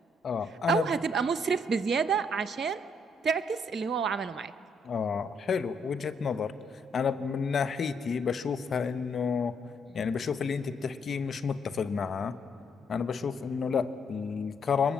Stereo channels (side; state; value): both; normal; correlation 0.72